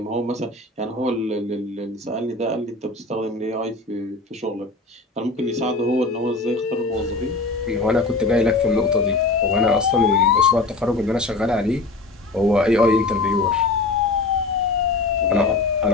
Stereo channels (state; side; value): quieter; right; 3.4 dB